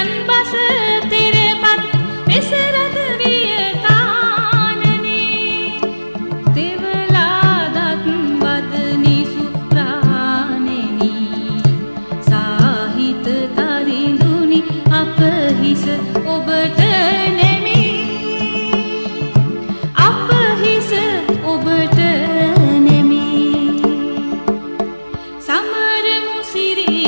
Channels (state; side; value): inverted; both; correlation -1.00